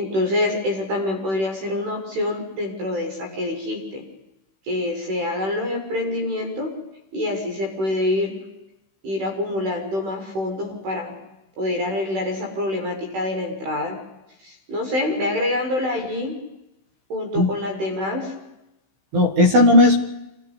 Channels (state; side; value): late; left; 16 ms